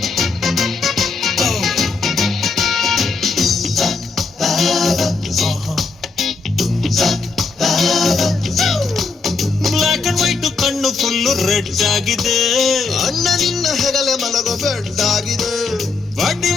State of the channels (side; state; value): right; quieter; 4.3 dB